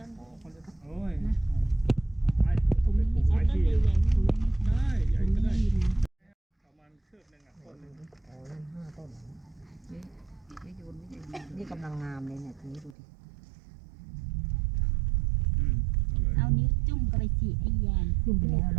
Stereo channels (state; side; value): drops out; left; at 13.0 s